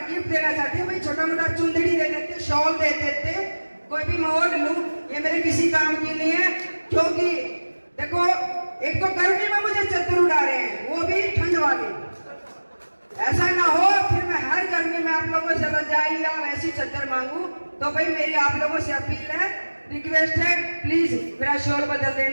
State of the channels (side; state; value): both; inverted; correlation -1.00